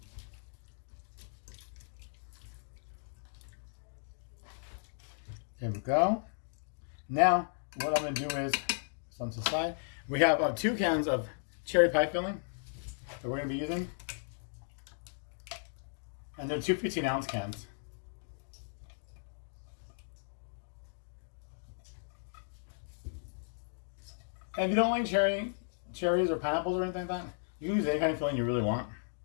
There we go. Now, what I'm going to do is, on the side, we have 2 cans of cherry pie filling that we're going to be using. And they're 2 15-ounce cans. And if you don't like cherries or pineapples or anything like that, you can use any kind of filling you really want.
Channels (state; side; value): silent; right; digital silence